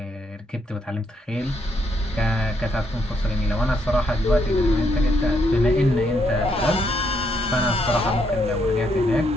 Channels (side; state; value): both; normal; correlation 0.75